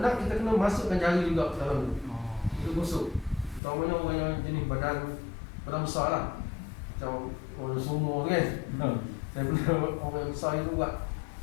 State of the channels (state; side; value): drops out; right; at 3.6 s